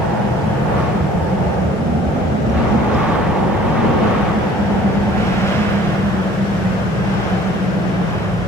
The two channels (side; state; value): both; normal; correlation 0.52